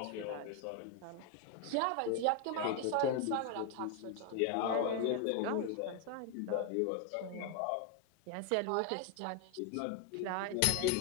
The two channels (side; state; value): both; different; correlation 0.01